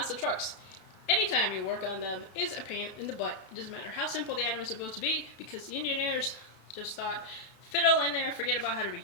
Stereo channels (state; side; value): late; right; 32 ms